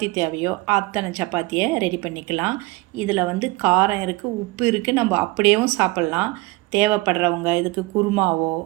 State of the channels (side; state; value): left; quieter; 22.6 dB